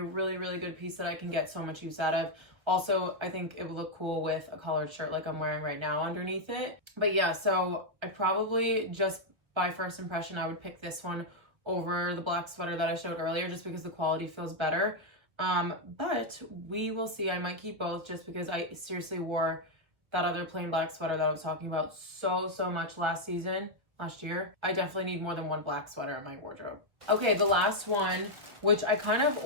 really, really good piece that I can get so much use out of. Also, I think it would look cool with a collared shirt like I'm wearing right now underneath it. But yeah, so I probably just by first impression, I would pick this one over the black sweater that I showed earlier just because the quality feels better. But we will see. I might keep both just because I seriously wore that other plain black sweater that I was talking about so much last year. I definitely need more than one black sweater in my wardrobe. Okay, the last one, which I kind of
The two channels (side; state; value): left; late; 1.6 ms